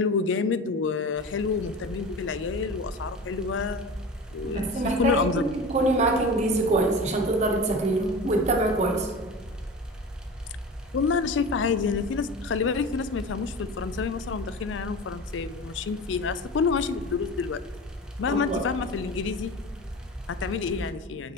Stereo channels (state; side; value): normal; both; correlation 0.32